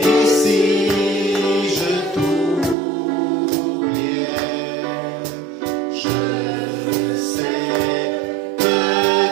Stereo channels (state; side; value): drops out; left; at 2.8 s